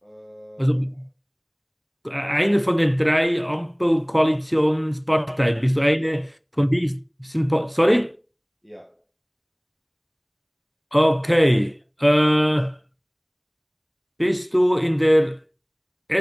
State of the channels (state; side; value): identical; both; correlation 1.00